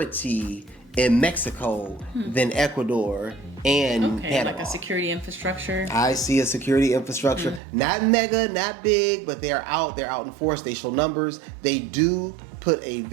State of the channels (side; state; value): left; drops out; at 7.6 s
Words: in Mexico than Ecuador and Panama. Like a security infrastructure. I see a security infrastructure. Not mega, not big, but they're out in force. They show numbers. They do put a